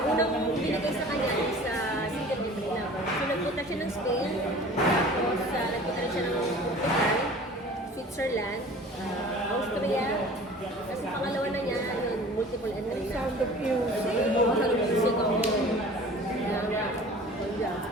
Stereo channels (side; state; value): both; normal; correlation 0.44